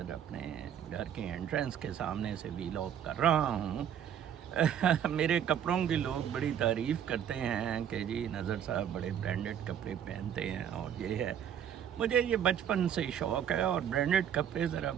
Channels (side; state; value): left; quieter; 9.3 dB